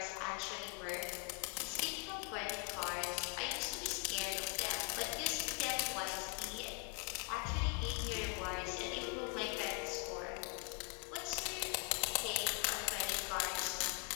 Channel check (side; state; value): right; quieter; 35.5 dB